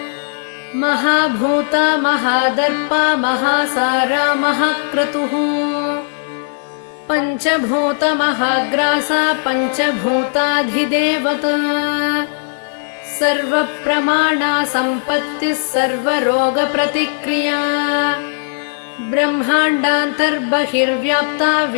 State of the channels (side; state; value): right; silent; 68 dB below the other